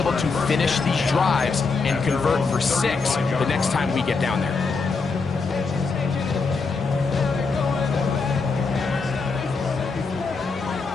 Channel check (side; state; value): right; quieter; 4.4 dB